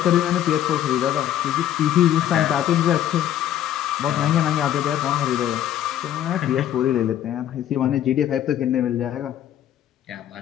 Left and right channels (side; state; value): right; quieter; 11.3 dB